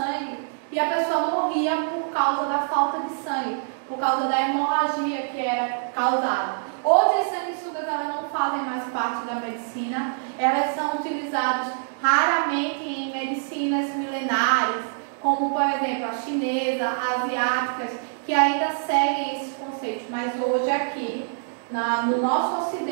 e a pessoa morria por causa da falta de sangue. por causa da hemorragia que era causada. Hoje as sanguessugas elas não fazem mais parte da medicina, elas são utilizadas raramente em medicinas milenares, como por exemplo a chinesa, asiáticas, que ainda seguem esses conceitos, mas hoje aqui, no nosso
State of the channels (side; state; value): left; silent; digital silence